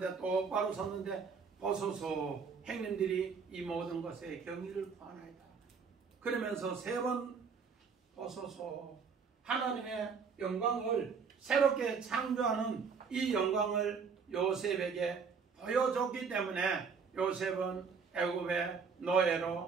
똑바로 섰는데 보소서, 형님들이 이 모든 것에 경의를 구하나이다. 그러면서 3번 보소서, 하나님의 영광을 새롭게 창조하는 이 영광을 요셉에게 보여줬기 때문에 요셉은 애굽의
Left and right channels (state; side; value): quieter; left; 5.7 dB